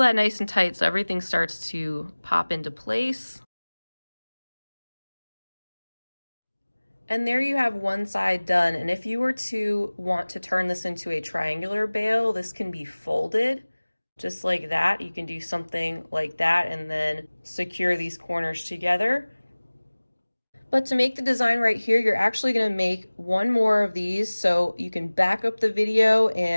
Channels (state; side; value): inverted; both; correlation -1.00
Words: nice and tight so everything starts to pop into place. And there you have one side done. And if you were to want to turn this into a triangular bail, this can be folded just like that. You can do something like that and then secure these corners together. But to make the design right here, you're actually going to make 1 more of these, so you can back up the video